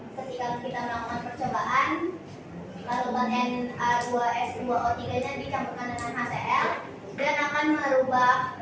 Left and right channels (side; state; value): both; identical; correlation 1.00